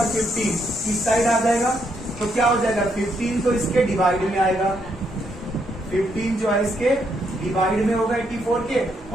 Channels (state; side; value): normal; both; correlation 0.76